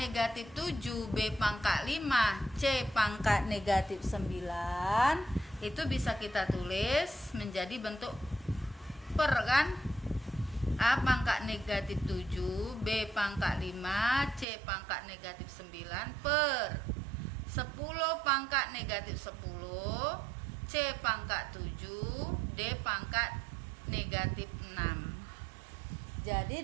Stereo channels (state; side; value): drops out; left; at 14.5 s